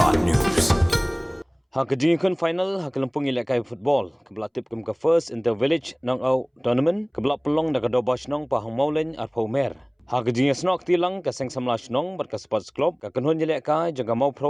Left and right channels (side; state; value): both; identical; correlation 1.00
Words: Haka final Haka Lympung Ialehkai football kebelah tip ke first in the village knockout tournament kebelah pelong dak doba Shnong Pahammawlein atau mer. Haka snok tilang ke seng samla Shnong berka sports club ke kenhun Ialehkai jaga mau